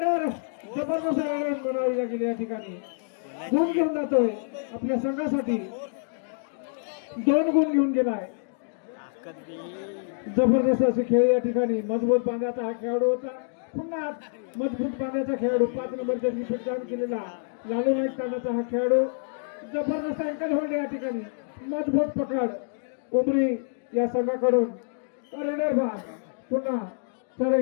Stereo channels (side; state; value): right; silent; digital silence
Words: जबरदस्त बनावी लागेल या ठिकाणी. गुण घेऊन जातोय आपल्या संघासाठी 2 गुण घेऊन गेलाय. जबरदस्त असे खेळ या ठिकाणी मजबूत बांधाचा हा खेळाडू होता. पुन्हा मजबूत बांधाचा खेळाडू 5 नंबर जर्सी परिधान केलेला लालू नाईक तांडाचा हा खेळाडू जबरदस्त अँकल होल्ड या ठिकाणी मजबूत पकड उमरी या संघाकडून रेडर बाद. पुन्हा चढाई